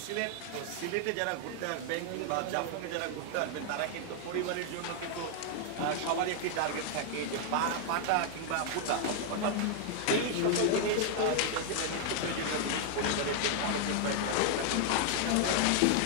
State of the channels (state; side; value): different; both; correlation 0.00